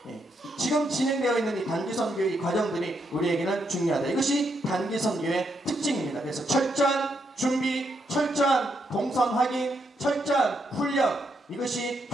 지금 진행되어 있는 이 단기 선교의 과정들이 우리에게는 중요하다. 이것이 단기 선교의 특징입니다. 그래서 철저한 준비, 철저한 동선 확인, 철저한 훈련, 이것이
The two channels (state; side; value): normal; both; correlation 0.79